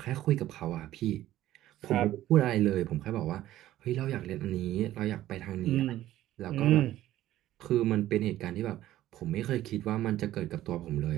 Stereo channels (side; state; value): left; quieter; 14.0 dB